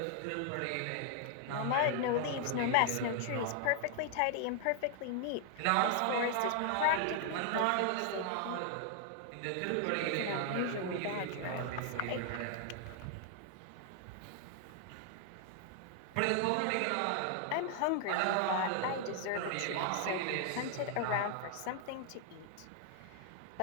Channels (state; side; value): different; both; correlation 0.00